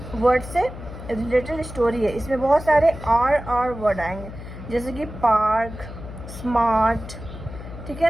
वर्ड से रिलेटेड स्टोरी है। इसमें बहुत सारे आर वर्ड आएंगे, जैसे कि पार्क, स्मार्ट, ठीक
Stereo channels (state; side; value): noise; left; hum, 12 dB below the sound